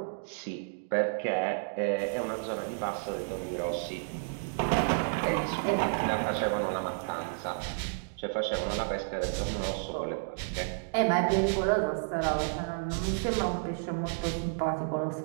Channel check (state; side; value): silent; left; digital silence